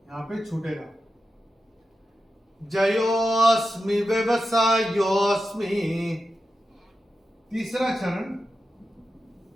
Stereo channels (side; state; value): both; normal; correlation 0.90